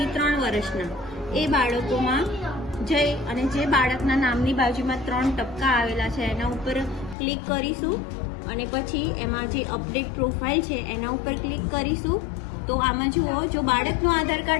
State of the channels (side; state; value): right; drops out; at 7.2 s